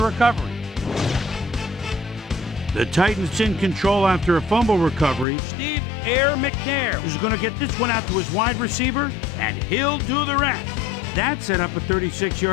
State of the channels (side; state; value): right; drops out; at 5.2 s